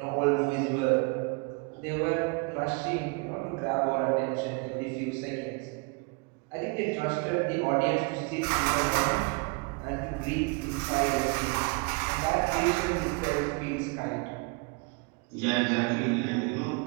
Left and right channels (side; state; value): left; quieter; 30.6 dB